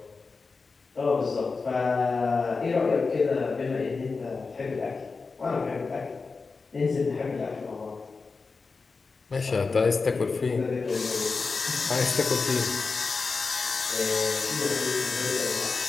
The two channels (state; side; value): quieter; right; 4.4 dB